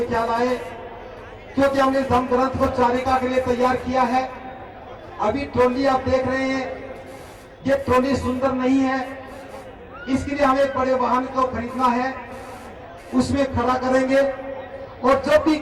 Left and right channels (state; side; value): identical; both; correlation 1.00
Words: ख्याल आए, क्योंकि हमने धम्म ग्रंथ को चारिका के लिए तैयार किया है। अभी ट्रॉली आप देख रहे हैं, ये ट्रॉली सुंदर नहीं है, इसके लिए हमें बड़े वाहन को खरीदना है, उसमें खड़ा करेंगे। और जब भी